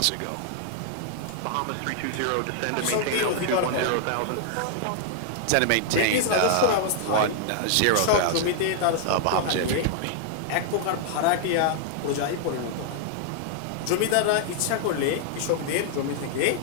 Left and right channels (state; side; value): different; both; correlation -0.01